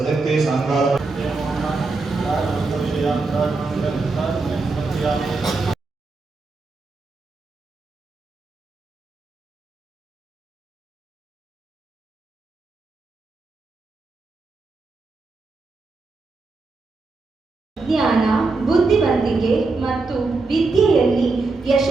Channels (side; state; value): left; quieter; 3.8 dB